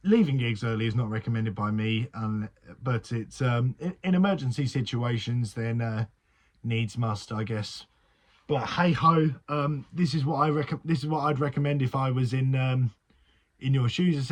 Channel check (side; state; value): both; identical; correlation 1.00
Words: Leaving gigs early is not recommended by me, but it's in emergency situations then needs must, I guess. But hey ho, this is what I'd recommend if I was in your shoes.